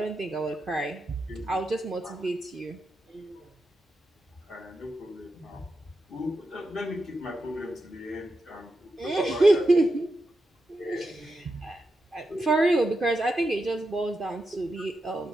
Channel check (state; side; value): normal; both; correlation 0.88